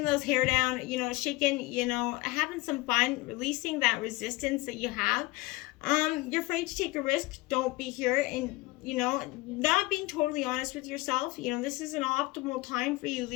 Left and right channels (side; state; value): right; quieter; 21.5 dB